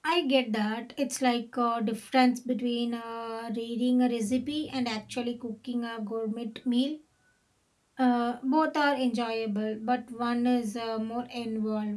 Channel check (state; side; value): identical; both; correlation 1.00